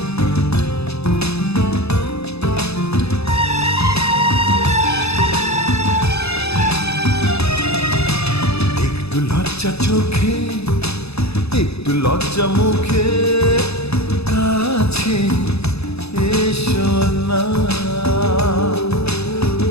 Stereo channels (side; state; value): right; late; 0.79 ms